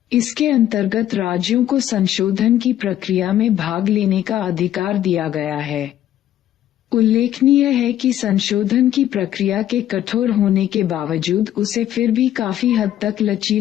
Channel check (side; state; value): right; quieter; 11.9 dB